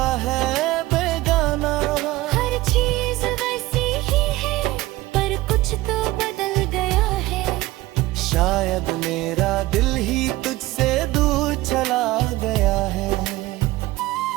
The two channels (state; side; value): quieter; left; 18.2 dB